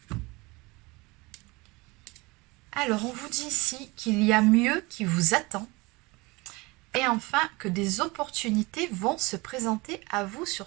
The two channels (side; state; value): left; quieter; 24.2 dB